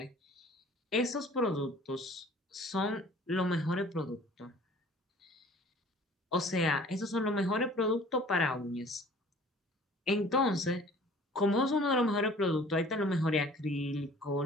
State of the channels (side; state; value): both; normal; correlation 0.50